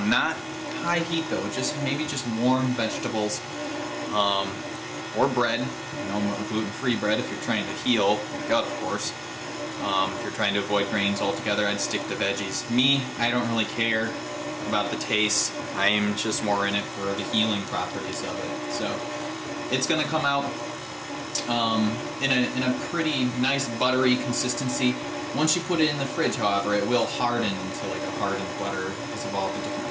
high heat though, maybe just warm vegetables, or bread. You know, gluten-free bread if you're trying to heal your gut, of course. If you're trying to avoid grains altogether, I'd stick to veggies. Me, I don't really care about the taste. I'm just more in it for the healing properties of it. So it's going to come out in a pretty nice buttery consistency. Once you put it in the fridge, however, it will harden into like a hardened butter because of all the different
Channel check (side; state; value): both; identical; correlation 1.00